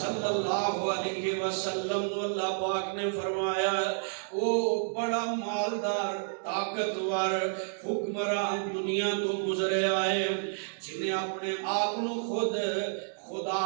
اللہ علیہ وسلم اللہ پاک نے فرمایا او بڑا مالدار طاقتور حکمران دنیا تو گزرے آئے جنہیں اپنے آپ نو خود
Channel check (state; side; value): silent; left; digital silence